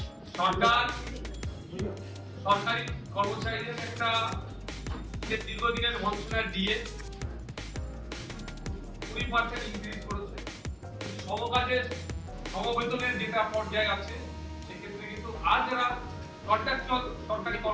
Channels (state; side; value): identical; both; correlation 1.00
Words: সরকার সরকারি কর্মচারীদের একটা যে দীর্ঘদিনের বঞ্চনার ডিএ 20% ইনক্রিজ করেছে। সমকাজের সমবেতনের যেটা পর্যায়ে আছে সেক্ষেত্রে কিন্তু আর যারা কন্ট্রাকচুয়াল সরকারি